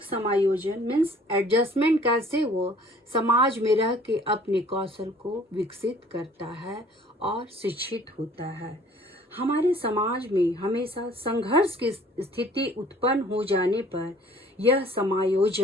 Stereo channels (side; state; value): both; normal; correlation 0.53